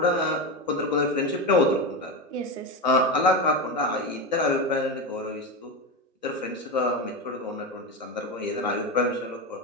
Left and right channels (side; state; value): both; normal; correlation 0.17